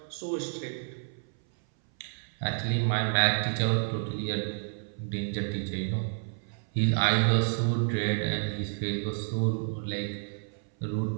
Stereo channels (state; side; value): silent; left; 58 dB below the other